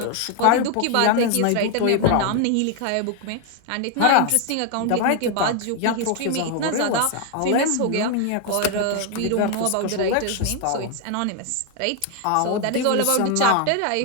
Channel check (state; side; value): different; both; correlation 0.01